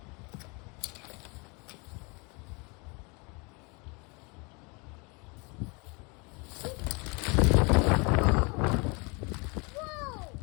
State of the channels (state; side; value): quieter; right; 30.0 dB